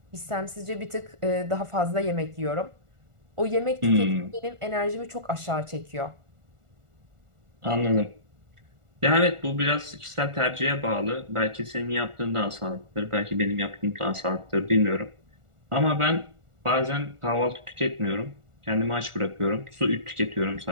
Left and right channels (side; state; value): left; late; 1.4 ms